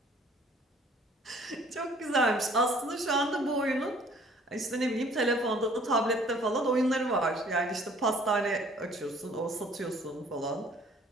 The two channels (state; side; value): normal; both; correlation 0.56